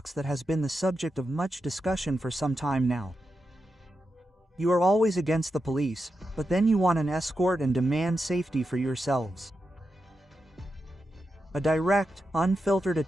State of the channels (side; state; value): both; normal; correlation 0.88